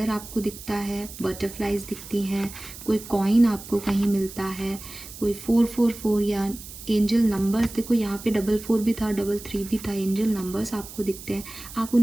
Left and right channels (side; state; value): right; noise; hiss, 14 dB below the sound